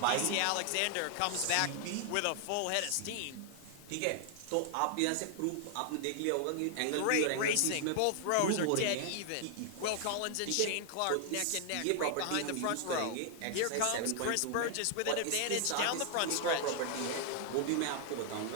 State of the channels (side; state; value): both; different; correlation 0.00